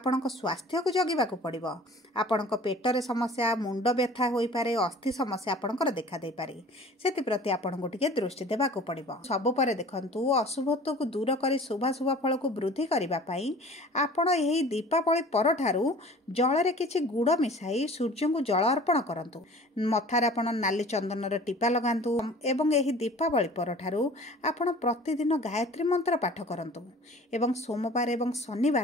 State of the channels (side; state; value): both; normal; correlation 0.45